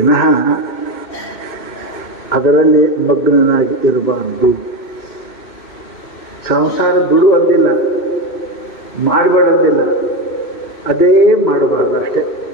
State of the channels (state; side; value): late; right; 2.1 ms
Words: ಅದರಲ್ಲಿ ಮಗ್ನನಾಗಿ ಇರಬಾರದು. ಸಂಸಾರ ಬಿಡುವಂದಿಲ್ಲ, ಮಾಡಬೇಡಂದಿಲ್ಲ, ಅದೇ ಮಾಡಬಾರ್ದು ಅಷ್ಟೇ,